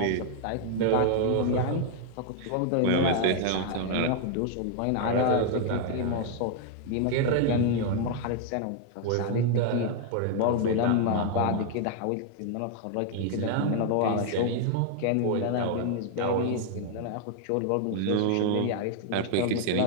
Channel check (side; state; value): both; different; correlation 0.00